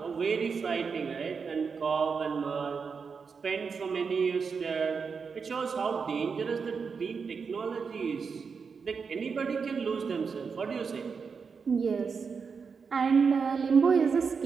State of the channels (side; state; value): left; quieter; 5.6 dB